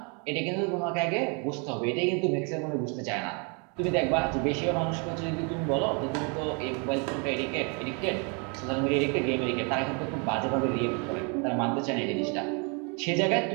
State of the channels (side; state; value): left; quieter; 35.1 dB